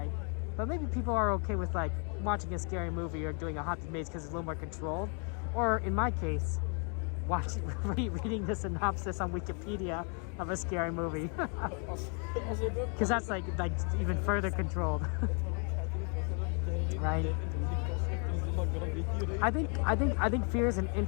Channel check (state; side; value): quieter; right; 39.7 dB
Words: But maybe people are okay with like watching a scary movie or doing a haunted maze because it's a little more controlled. Or in my case, reading the synopsis on Wikipedia of a scary movie, because that's like even further controlled. Right. I think fear is an